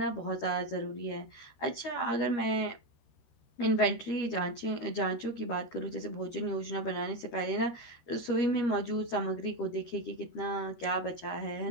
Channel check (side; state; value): right; late; 13 ms